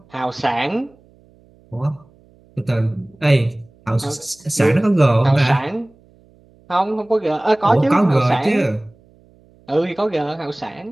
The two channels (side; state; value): right; noise; hum, 30 dB below the sound